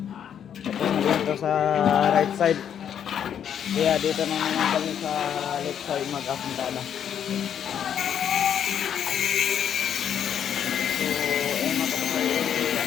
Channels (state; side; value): quieter; right; 8.9 dB